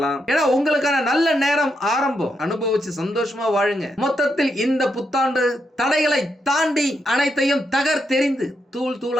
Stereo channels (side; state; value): both; normal; correlation 0.81